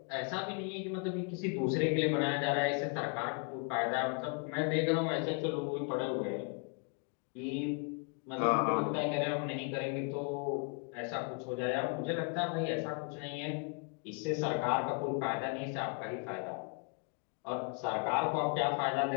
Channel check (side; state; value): right; quieter; 37.1 dB